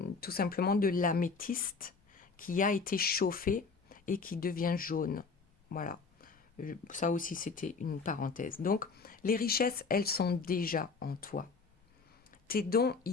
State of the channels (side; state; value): right; quieter; 4.7 dB